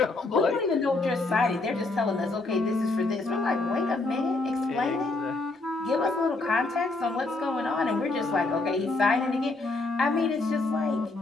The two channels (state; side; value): quieter; right; 3.2 dB